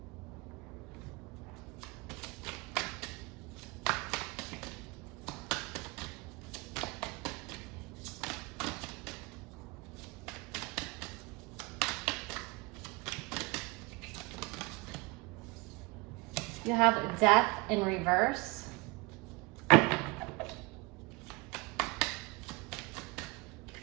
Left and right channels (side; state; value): left; quieter; 25.8 dB